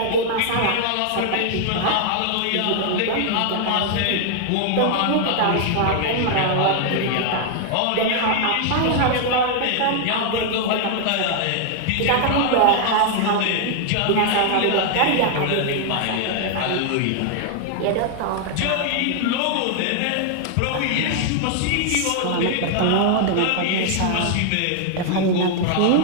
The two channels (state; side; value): different; both; correlation 0.00